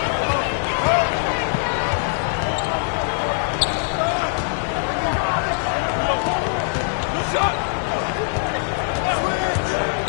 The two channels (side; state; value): right; silent; 64 dB below the other